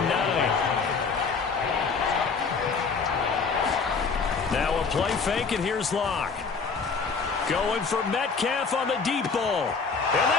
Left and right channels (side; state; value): right; quieter; 5.0 dB